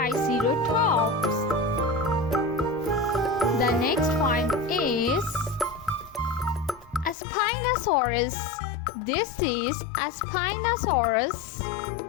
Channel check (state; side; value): drops out; right; at 7.2 s